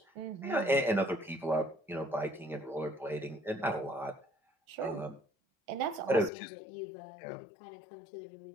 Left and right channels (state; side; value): drops out; right; at 6.3 s